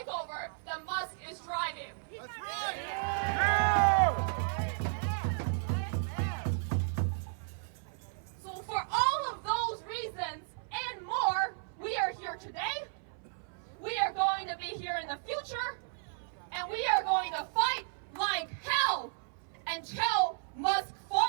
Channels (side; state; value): left; silent; 55 dB below the other